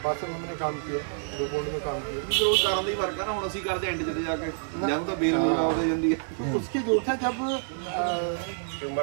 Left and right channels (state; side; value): silent; left; digital silence